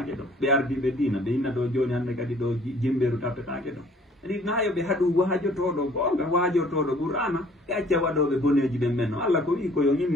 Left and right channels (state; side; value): normal; both; correlation 0.56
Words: ɗo ɓe ardiɓe dina ɓe inna ɗo joni hande kadi ɗo jimɓeru taptetake ɗo ɗi nayo ɓe haɗu wajotoɗo gonga wajotoɗo qur'ana e acca waɗoɓe boneji ɓen men no Allah ko wi ko yo